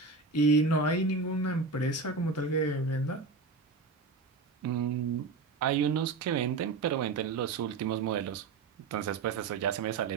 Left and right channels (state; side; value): quieter; left; 4.2 dB